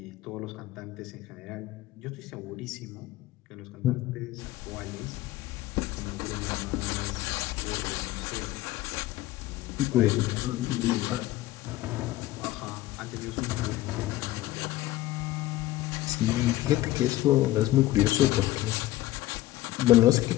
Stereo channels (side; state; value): right; quieter; 16.1 dB